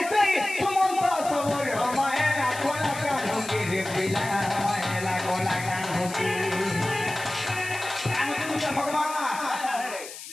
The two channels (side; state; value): left; noise; hiss, 12 dB below the sound